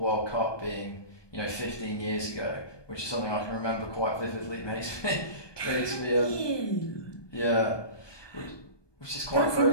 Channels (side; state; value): right; late; 1.2 ms